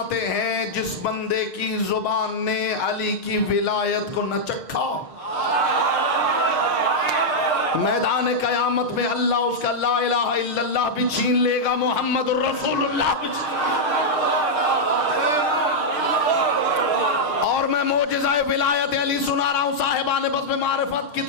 हैं जिस बंदे की जुबान ने अली की विलायत को न चखा, मैदान कयामत में अल्लाह उसका ला इलाहा इल्लल्लाह भी छीन लेगा, मोहम्मद रसूलुल्लाह भी। और मैं मोजज़ा विलायत अली सुना रहा हूं साहिबान बज़्म मारिफत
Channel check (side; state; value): right; late; 6.6 ms